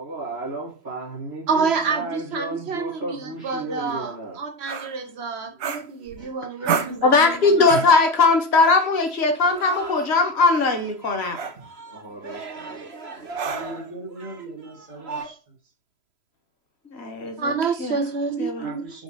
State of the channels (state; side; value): late; left; 3.0 ms